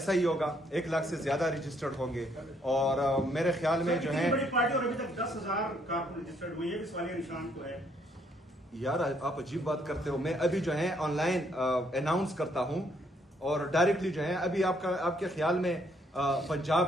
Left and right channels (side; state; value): both; normal; correlation 0.69